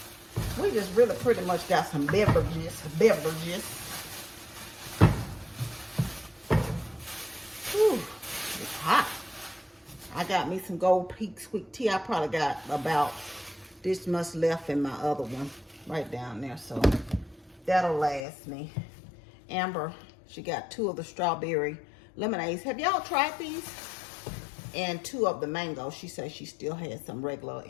we just really pretty much got some beverages. Whew, it's hot. I got me some Gold Peak sweet tea. I probably got about this much left in my other one right down there, so that'll last me. Amber, she got 2 of the strawberry lemonades. Have y'all tried these? And 2 of the mango. She says she still has some regular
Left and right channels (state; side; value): drops out; right; at 18.2 s